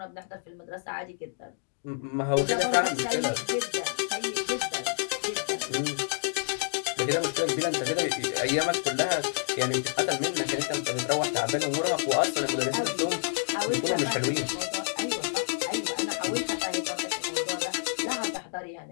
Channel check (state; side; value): silent; right; digital silence